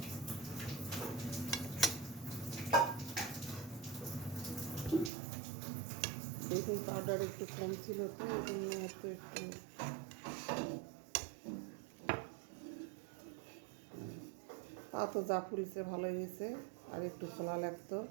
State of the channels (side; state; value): left; drops out; at 5.1 s